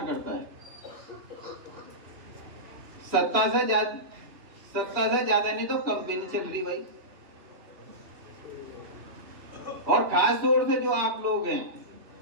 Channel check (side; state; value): left; late; 2.9 ms